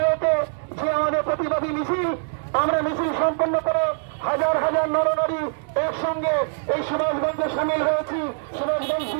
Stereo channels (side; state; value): left; silent; 63 dB below the other